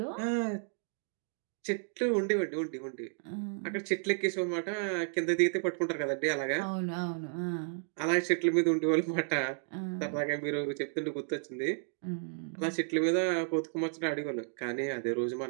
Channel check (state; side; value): silent; left; digital silence